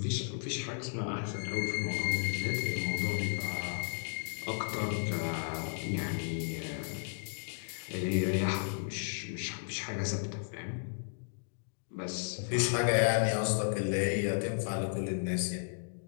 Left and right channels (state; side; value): silent; right; digital silence